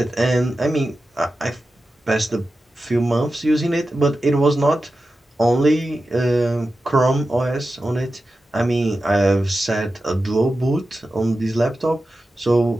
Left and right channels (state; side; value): normal; both; correlation 0.92